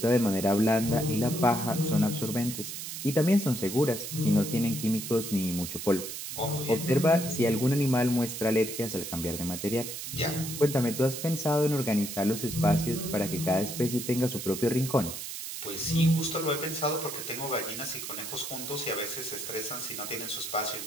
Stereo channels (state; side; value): noise; right; hiss, 7 dB below the sound